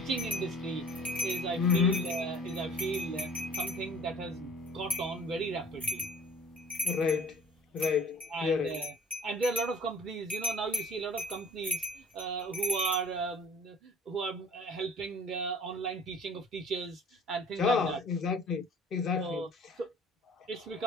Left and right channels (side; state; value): both; normal; correlation 0.50